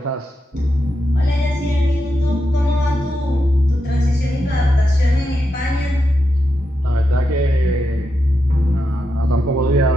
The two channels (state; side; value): normal; both; correlation 0.86